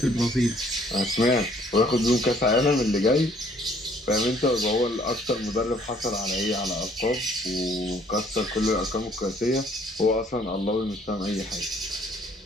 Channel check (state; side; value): normal; both; correlation 0.61